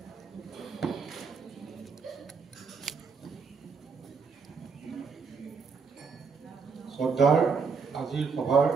শ্ৰদ্ধাৰ আজিৰ সভাৰ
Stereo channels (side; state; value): left; quieter; 5.3 dB